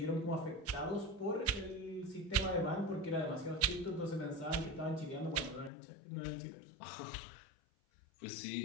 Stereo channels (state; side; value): drops out; right; at 5.7 s